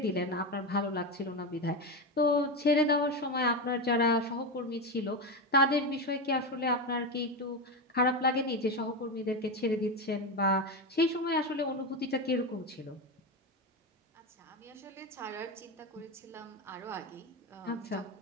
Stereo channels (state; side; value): normal; both; correlation 0.15